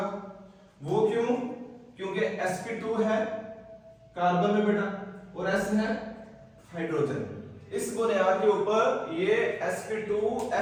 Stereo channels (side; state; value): both; identical; correlation 1.00